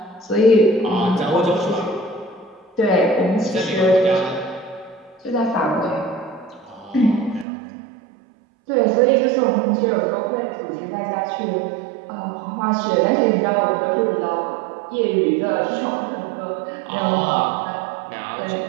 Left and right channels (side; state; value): left; drops out; at 7.5 s